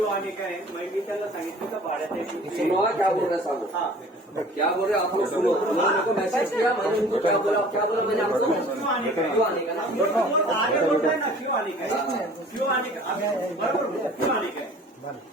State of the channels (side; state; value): both; normal; correlation 0.48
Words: आणि काय मी त्यांना सांगितलं का भाड्याच्या सुनो क्या बोल रहे साहब, क्या बोल रहे आप लोग सुनो. उन्होंने को मैसेज किया, मैंने उनको क्या बोला मैंने आपको क्यों आने का आगे बोलता है ना, क्यों आने का बरोबर, क्यों आने का.